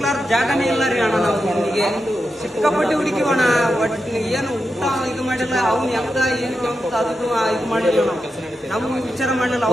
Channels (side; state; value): both; normal; correlation 0.88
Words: ಜಾಗನೇ ಇಲ್ಲ ರೀ ಅಣ್ಣ. ನಾವು ಹುಡುಗಿಗೆ ಸಿಕ್ಕಾಪಟ್ಟೆ ಹುಡುಕಿವಣ. ಒಟ್ಟು ಏನು ಊಟ ಇದು ಮಾಡಿಲ್ಲ. ಅವ್ನು ಹೆಂಗ ಏನು ಅಂತ ಅದಕ್ಕೂ ಇದು ಮಾಡಿಲ್ಲ. ನಾವು ವಿಚಾರ ಮಾಡಿಲ್ಲ.